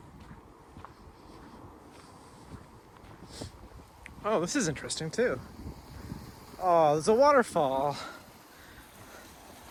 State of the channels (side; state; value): both; identical; correlation 1.00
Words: Oh, this is interesting too. Oh, there's a waterfall.